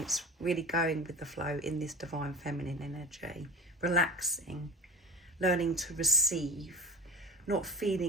really going with the flow in this divine feminine energy, relaxing, learning to receive, not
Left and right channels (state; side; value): normal; both; correlation 0.33